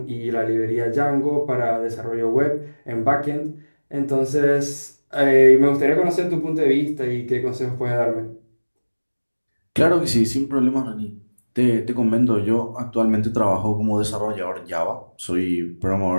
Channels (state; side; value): inverted; both; correlation -1.00